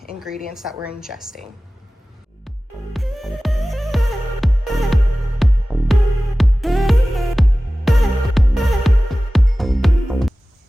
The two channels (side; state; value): both; normal; correlation 0.97